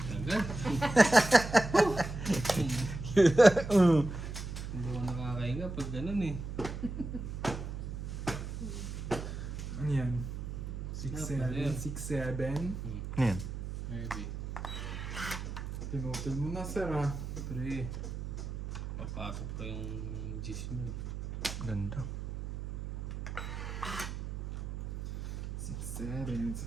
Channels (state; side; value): noise; right; hum, 6 dB below the sound